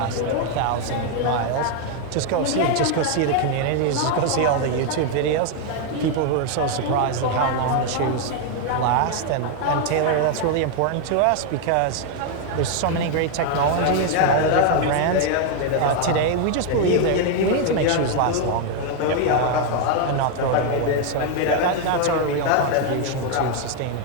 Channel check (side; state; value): both; different; correlation 0.01